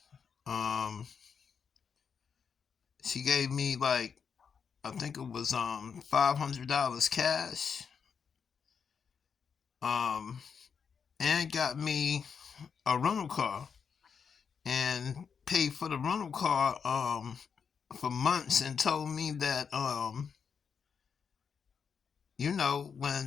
um she gave me, like, I think it was $500 cash, um and got me a rental car and paid for the rental car for months, and told me that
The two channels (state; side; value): quieter; right; 6.4 dB